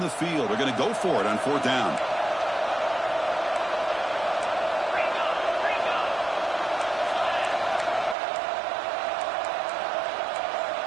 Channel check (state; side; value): drops out; left; at 8.2 s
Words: field. They're going to go for it on 4th down.